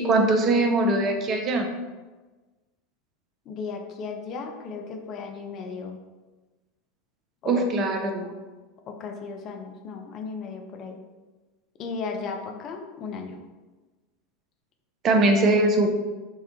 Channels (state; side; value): normal; both; correlation 0.32